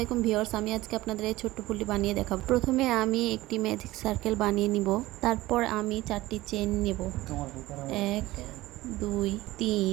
ভিউয়ার্স, আমি আজকে আপনাদের এই ছোট্ট ফুলটি বানিয়ে দেখাবো। প্রথমে আমি একটি ম্যাজিক সার্কেল বানিয়ে নিব। তারপর আমি 4টি চেইন নেব, 1 2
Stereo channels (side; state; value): left; quieter; 17.9 dB